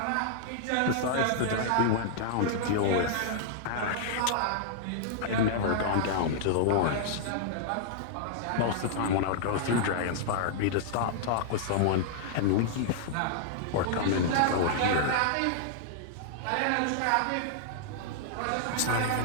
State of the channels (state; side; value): different; both; correlation -0.01